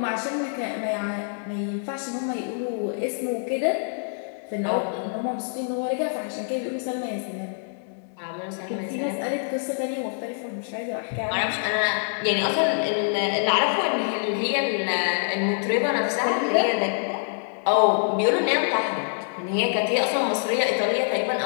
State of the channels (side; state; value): right; silent; digital silence